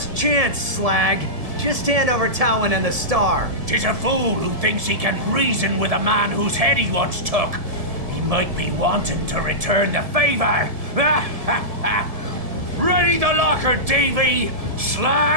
chance, Slag. Just hand over Towin and the star. 'Tis a fool who thinks he can reason with a man whose head he once took. He might be wanting to return the favor. Ready the locker, Davy.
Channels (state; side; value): late; left; 1.7 ms